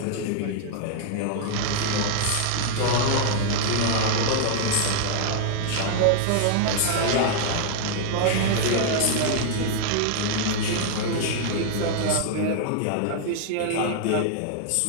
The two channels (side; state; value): both; different; correlation 0.00